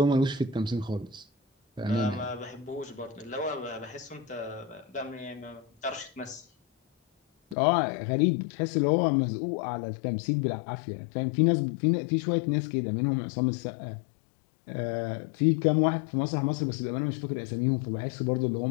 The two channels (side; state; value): right; drops out; at 7.6 s